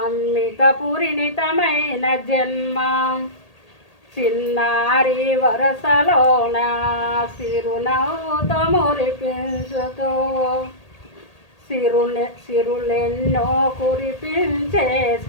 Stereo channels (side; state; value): right; late; 1.8 ms